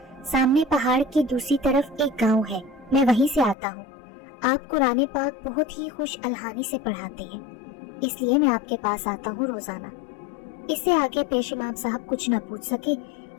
سامنے پہاڑ کی دوسری طرف ایک گاؤں ہے، میں وہیں سے آتا ہوں۔ آپ قرآن پاک بہت ہی خوش الحانی سے پڑھاتے ہیں، اس لیے میں آپ کے پاس آتا ہوں روزانہ۔ اس سے آگے پیش امام صاحب کچھ نہ پوچھ سکے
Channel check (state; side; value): drops out; right; at 3.6 s